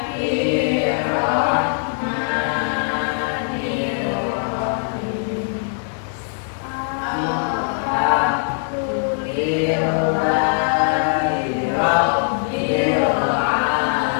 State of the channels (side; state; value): right; silent; 65 dB below the other